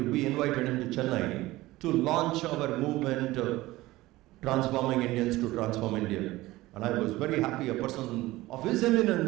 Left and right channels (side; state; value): left; quieter; 18.3 dB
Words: invited him to Chennai to launch our movement, Transforming Indians to Transform India. And I was very happy a person of his